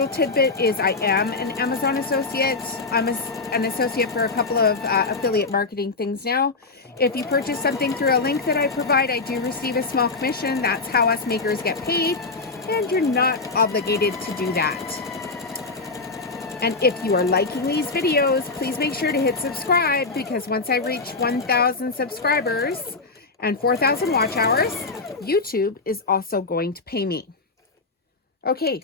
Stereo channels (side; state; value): right; quieter; 3.9 dB